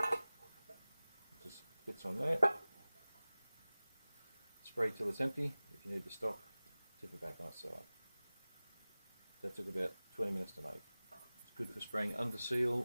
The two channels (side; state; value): both; inverted; correlation -0.99